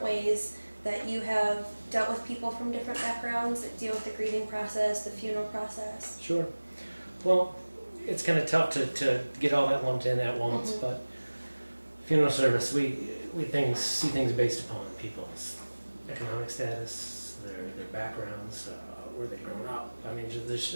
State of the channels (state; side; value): inverted; both; correlation -1.00